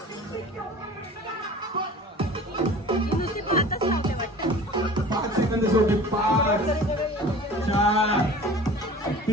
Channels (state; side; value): normal; both; correlation 0.42